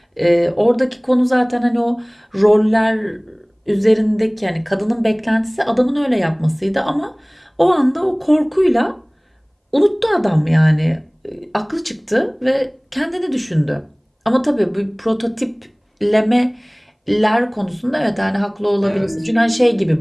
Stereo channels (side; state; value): both; identical; correlation 1.00